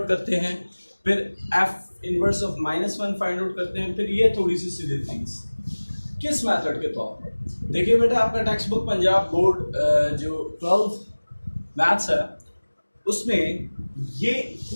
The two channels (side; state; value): both; inverted; correlation -1.00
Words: करते हैं, फिर f inverse of -1 find out करते हैं, फिर ये थोड़ी सी सीधी थिंग्स किस मेथड के तौर पर। देखिए बेटा, आपका टेक्स्ट बुक पंजाब बोर्ड जो 12th मैथ्स है उसमें ये